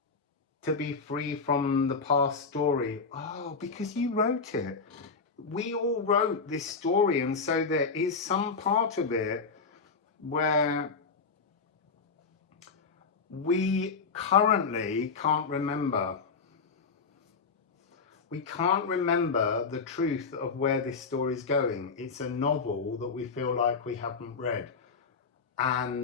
to be free from the past story. Oh, because you wrote it. We all wrote this story, and so there is some part of it where we currently can't remember. We can't remember the truth of where this story is going. It's a novel that we feel like we haven't read.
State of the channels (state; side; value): quieter; right; 4.9 dB